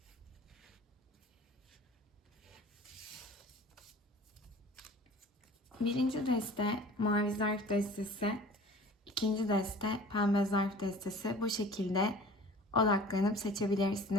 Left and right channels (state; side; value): normal; both; correlation 0.45